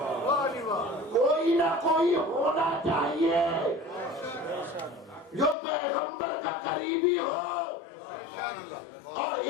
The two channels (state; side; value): drops out; right; at 5.6 s